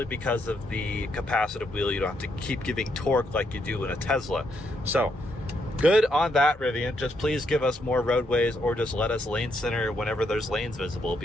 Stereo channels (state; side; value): normal; both; correlation 0.77